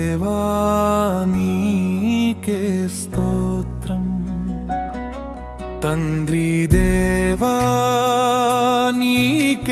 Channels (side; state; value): both; identical; correlation 1.00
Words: నీకే స్తోత్రం, తండ్రి దేవా